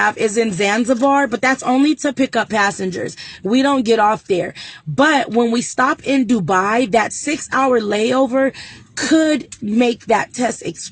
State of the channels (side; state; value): both; identical; correlation 1.00